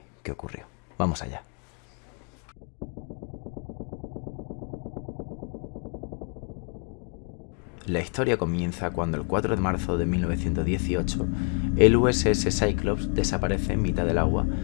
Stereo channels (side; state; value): right; quieter; 37.5 dB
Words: ocurrió. Vamos allá. La historia comienza cuando el 4 de marzo de 1918 el USS Cyclops desaparece en mitad del agua